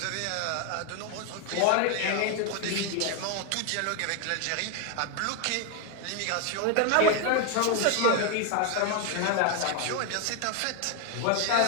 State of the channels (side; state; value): both; different; correlation 0.01